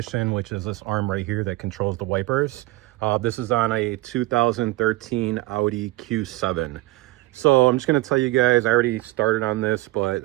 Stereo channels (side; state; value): left; quieter; 19.4 dB